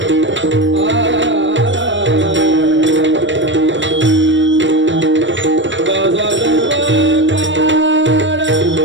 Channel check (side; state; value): left; late; 0.54 ms